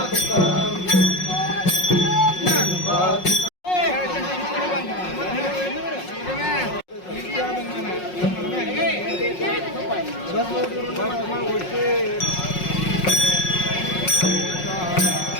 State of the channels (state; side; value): late; right; 5.5 ms